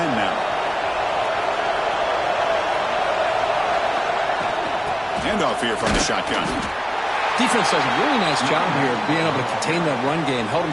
now. Handoff here from the shotgun. Defense does a really nice job here of being able to contain that run game, held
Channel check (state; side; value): identical; both; correlation 1.00